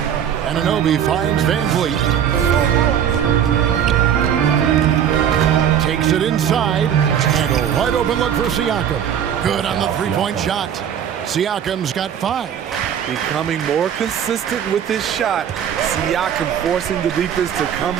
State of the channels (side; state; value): left; quieter; 9.0 dB